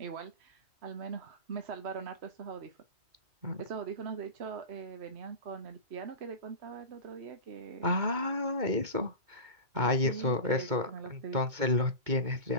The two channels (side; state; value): left; late; 2.2 ms